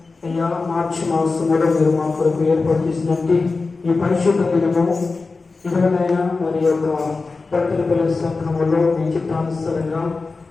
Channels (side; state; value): right; quieter; 4.0 dB